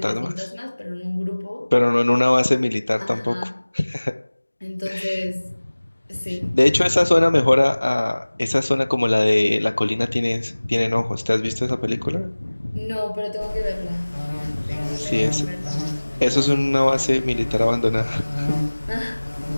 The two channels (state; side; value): inverted; both; correlation -1.00